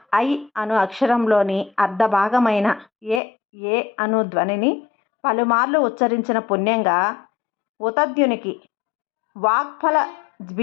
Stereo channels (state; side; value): drops out; right; at 3.2 s